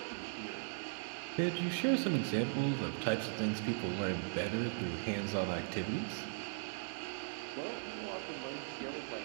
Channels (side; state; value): left; silent; 52 dB below the other